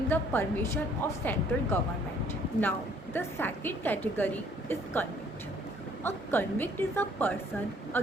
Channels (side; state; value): both; normal; correlation 0.61